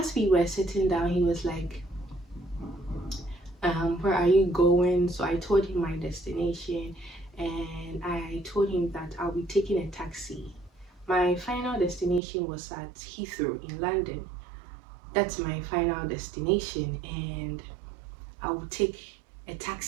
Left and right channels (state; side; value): drops out; left; at 12.2 s